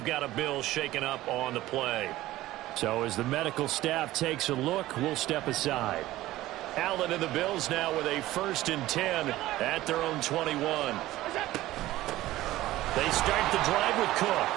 got a Bills shaken up on the play. So as the medical staff takes a look, we'll step aside. Allen and the Bills now with a 1st and 10 at their own 21. They start the drive with Cook.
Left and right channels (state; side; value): quieter; left; 16.1 dB